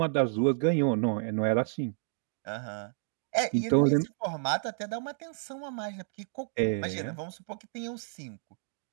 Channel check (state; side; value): silent; left; digital silence